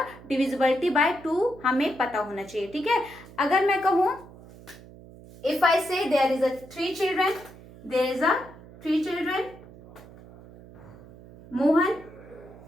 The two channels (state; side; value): noise; right; hum, 20 dB below the sound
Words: डिविजिबिलिटी बाय 2 हमें पता होना चाहिए. ठीक है. अगर मैं कहूं, if I say there is a 3 children, there is a 3 children, Mohan,